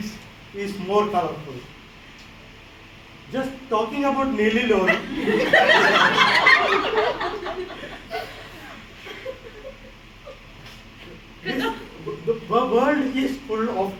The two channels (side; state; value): both; identical; correlation 1.00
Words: is more colorful. Just talking about Neeli Lori. The world is full of